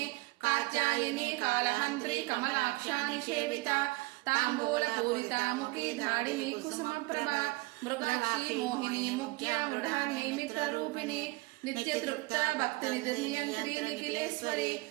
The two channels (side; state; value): left; quieter; 22.9 dB